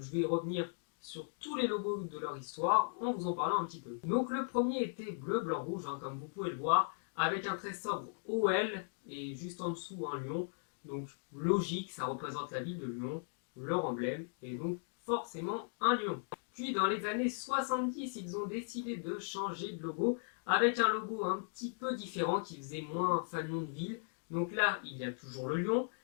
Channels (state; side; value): silent; right; digital silence